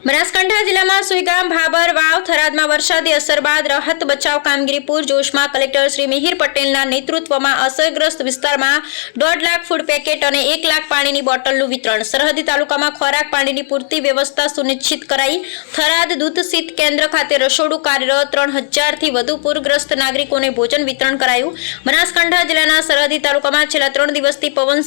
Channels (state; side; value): silent; right; digital silence